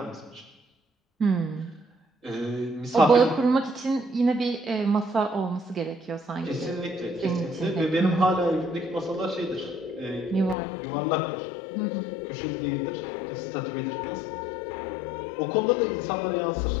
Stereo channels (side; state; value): right; drops out; at 10.6 s